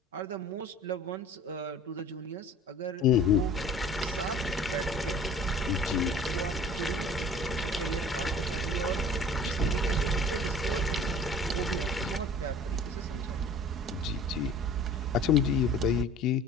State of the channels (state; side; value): normal; both; correlation 0.46